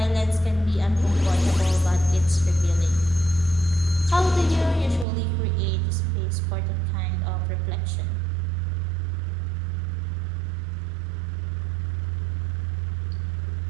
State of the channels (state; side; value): drops out; left; at 5.1 s